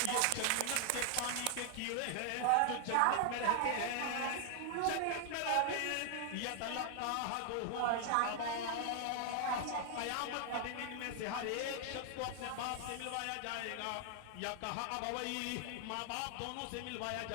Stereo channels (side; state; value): both; different; correlation 0.00